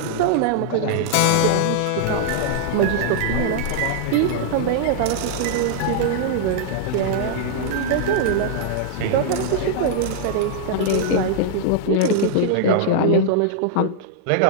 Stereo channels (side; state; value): both; different; correlation -0.01